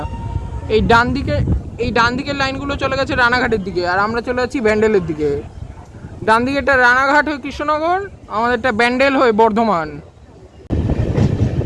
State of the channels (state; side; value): identical; both; correlation 1.00